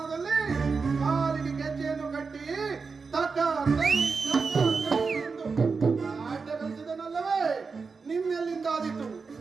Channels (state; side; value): quieter; left; 4.8 dB